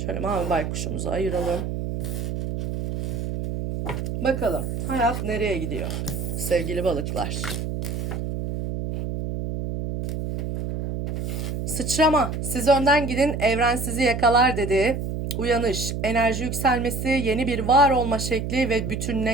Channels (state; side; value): noise; right; hum, 4 dB below the sound